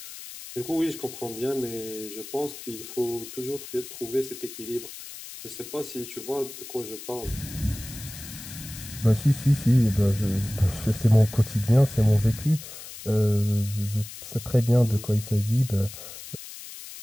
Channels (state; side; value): noise; left; hiss, 13 dB below the sound